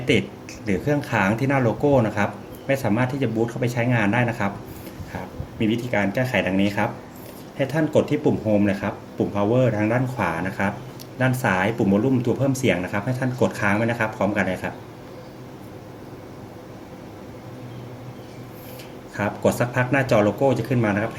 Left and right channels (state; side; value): identical; both; correlation 1.00